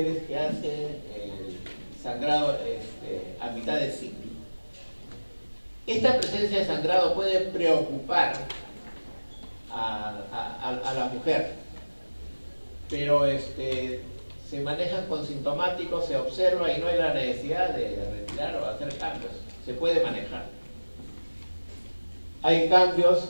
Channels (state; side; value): inverted; both; correlation -1.00